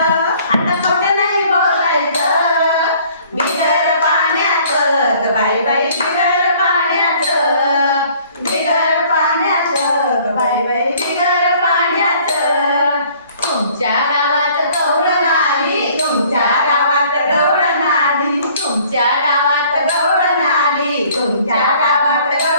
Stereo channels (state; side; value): inverted; both; correlation -0.56